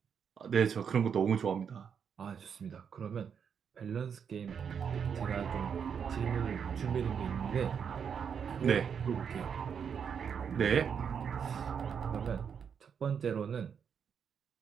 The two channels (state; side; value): quieter; left; 7.1 dB